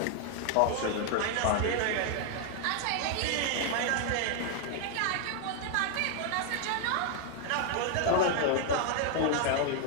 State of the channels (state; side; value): different; both; correlation 0.00